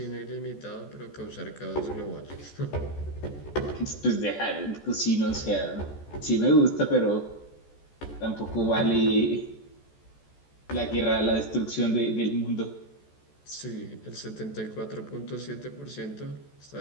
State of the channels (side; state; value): right; late; 14 ms